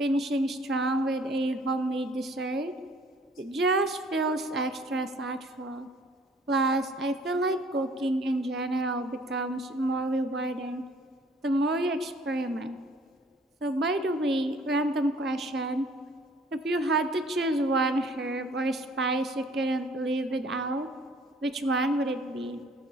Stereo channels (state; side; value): normal; both; correlation 0.57